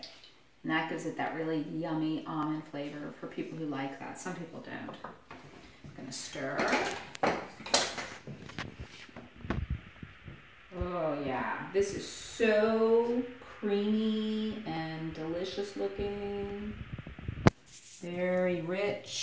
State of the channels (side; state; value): both; identical; correlation 1.00